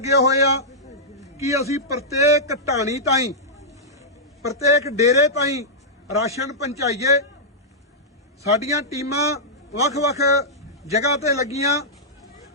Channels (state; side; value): normal; both; correlation -0.11